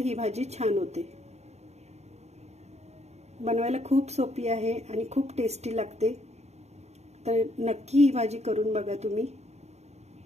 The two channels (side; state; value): left; late; 0.32 ms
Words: भाजी छान होते। बनवायला खूप सोपी आहे आणि खूप टेस्टी लागते। तर नक्की ही भाजी करून बघा तुम्ही।